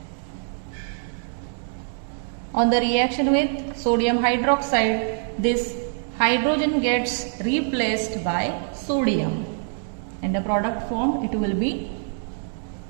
on the reaction with sodium hydroxide, this hydrogen gets replaced by sodium and the product formed, it will be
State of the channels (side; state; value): left; silent; digital silence